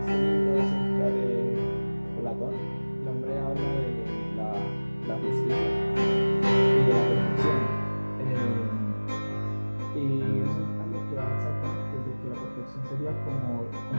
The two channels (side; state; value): both; inverted; correlation -1.00